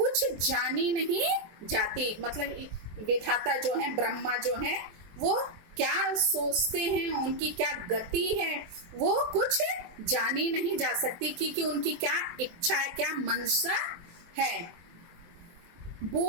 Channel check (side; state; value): left; late; 23 ms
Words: जानी नहीं जाती, मतलब विधाता जो है, ब्रह्मा जो है, वो क्या सोचते हैं, उनकी क्या गति है, वो कुछ जानी नहीं जा सकती, क्योंकि उनकी क्या इच्छा है, क्या मंशा है।